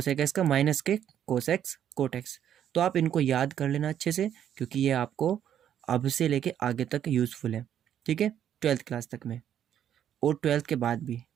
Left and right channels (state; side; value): quieter; left; 9.9 dB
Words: एक्स का माइनस के कोस एक्स कोट एक्स। तो आप इनको याद कर लेना अच्छे से, क्योंकि ये आपको अब से लेके आगे तक यूज़फुल है। ठीक है, 12th क्लास तक में और 12th के बाद भी